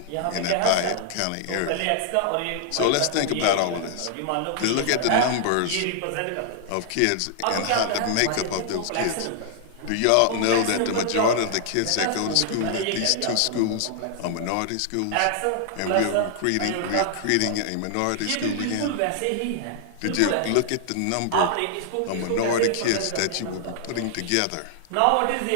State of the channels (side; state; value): both; different; correlation 0.00